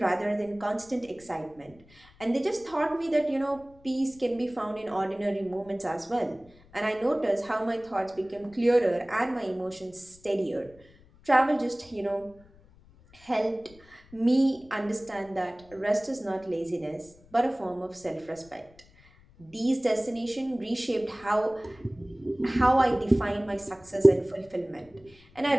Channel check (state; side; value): noise; left; rumble, 26 dB below the sound